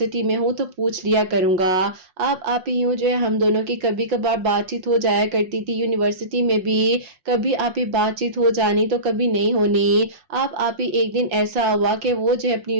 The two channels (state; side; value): late; left; 5.6 ms